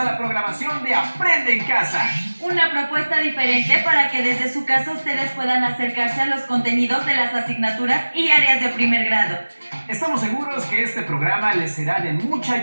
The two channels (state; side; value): inverted; both; correlation -1.00